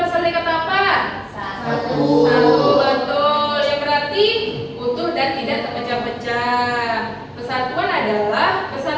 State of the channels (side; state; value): both; identical; correlation 1.00